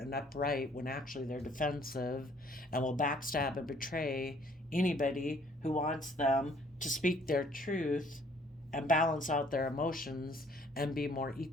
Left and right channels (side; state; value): both; normal; correlation 0.59